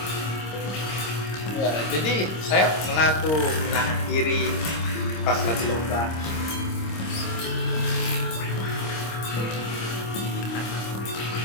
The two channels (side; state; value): right; late; 26 ms